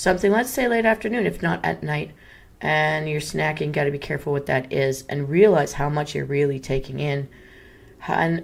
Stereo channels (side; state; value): both; identical; correlation 1.00